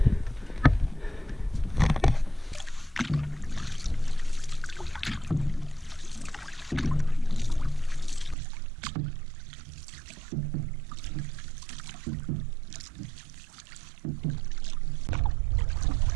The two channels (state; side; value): drops out; left; at 8.3 s